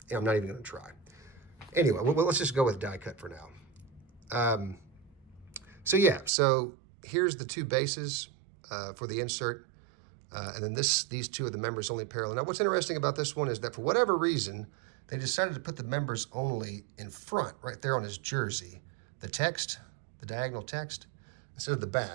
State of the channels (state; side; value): drops out; left; at 6.3 s